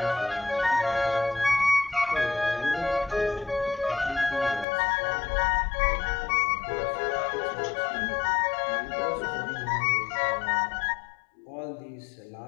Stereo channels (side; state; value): right; drops out; at 4.7 s